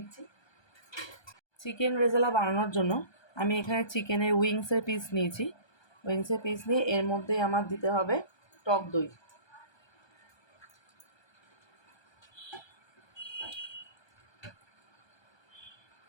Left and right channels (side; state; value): right; late; 1.3 ms